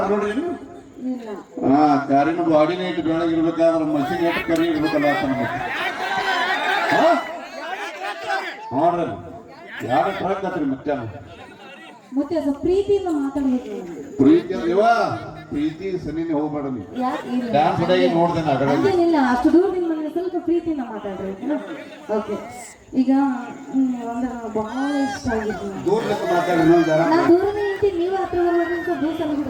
ನೋಡ್ರಿ ಇಲ್ಲ ಹಾ ಕಾರಿನ ಬಾಡಿನ ಇಟ್ಟು ಬೆಳಗಿರ್ಬೇಕಾದ್ರೆ ಮಷಿನ್ ಇಟ್ಟು ಕರಿ ಇರ್ಬೇಕಲ್ಲ ಅಂತ ನೋಡ್ರಿ ಯಾರ ಟ್ರಕ್ ಆತ್ರಿ ಮತ್ತೆ ಮತ್ತೆ ಸ್ವಲ್ಪ ಪ್ರೀತಿಯಿಂದ ಮಾತಾಡ್ಬೇಕು ಪ್ರೀತಿ ಇವ ಪ್ರೀತಿ ಸನಿನೇ ಹೋಗ್ಬೇಡ ನೀ ಡ್ಯಾನ್ಸ್ ಡೇ ನೋಡ್ದೆ ನಾ ಹಂಗೇನಿಲ್ಲ ಅಷ್ಟು ದೂರದಿಂದ ಬಂದ್ರೆ ಸ್ವಲ್ಪ ಪ್ರೀತಿಯಿಂದ ಮಾತಾಡ್ರಿ ಓಕೆ ಈಗ ಒಂದು ಬಹಳ ಇಷ್ಟ ಆಗಿತ್ತು ದೂರದಿಂದ ಮಾತಾಡಿ ನಾ ದೂರದಿಂದ ನಿಂತೀನಿ ನೀವು ಹತ್ರ ಬರ್ಬೇಕು ಸ್ವಲ್ಪ ದೂರ ಸಲ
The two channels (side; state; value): both; identical; correlation 1.00